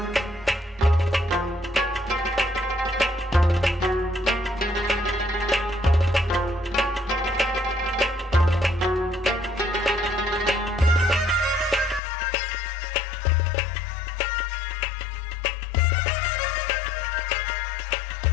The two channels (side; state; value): right; drops out; at 12.0 s